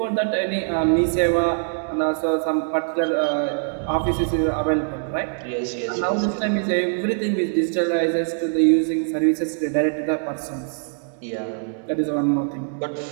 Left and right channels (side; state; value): left; silent; digital silence